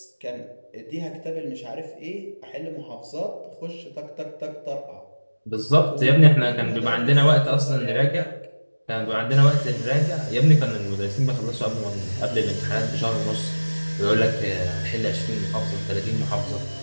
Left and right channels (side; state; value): both; inverted; correlation -1.00